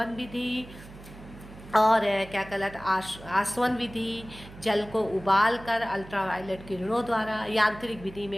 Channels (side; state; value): right; noise; hum, 17 dB below the sound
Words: विधि और क्या कहलाता आसवन विधि, जल को उबाल कर अल्ट्रावायलेट किरणों द्वारा। यांत्रिक विधि